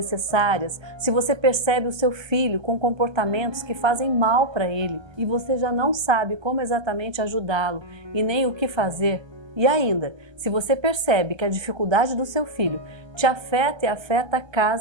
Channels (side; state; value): left; late; 1.3 ms